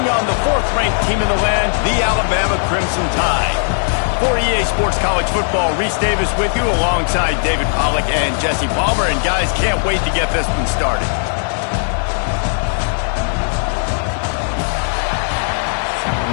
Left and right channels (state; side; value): silent; right; digital silence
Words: on the 4th-ranked team in the land, the Alabama Crimson Tide. For EA Sports College Football, Reese Davis with you alongside David Pollack and Jesse Palmer. And guys, can't wait to get this one started.